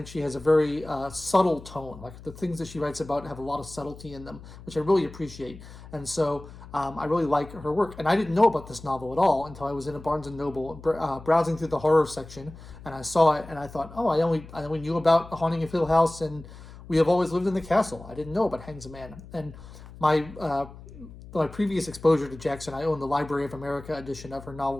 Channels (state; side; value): noise; left; hum, 17 dB below the sound